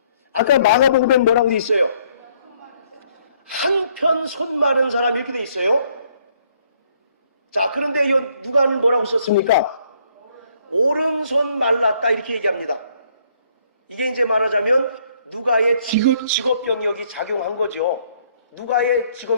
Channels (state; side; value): inverted; both; correlation -0.66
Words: 아까 마가복음엔 뭐라고 돼 있어요? 한편 손 마른 사람 이렇게 돼 있어요. 자, 그런데 누가는 뭐라고 썼습니까? 오른손 말랐다 이렇게 얘기합니다. 이게 이제 말하자면 누가의 직업병력이 작용한 거죠. 누가의